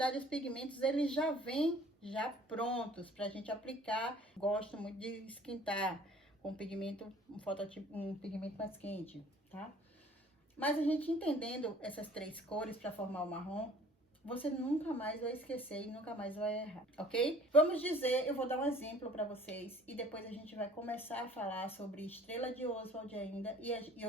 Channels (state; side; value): normal; both; correlation 0.51